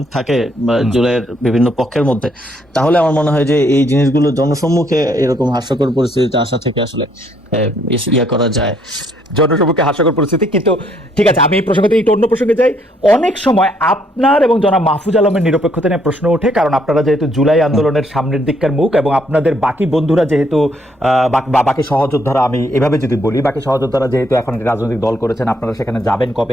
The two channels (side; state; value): both; normal; correlation 0.69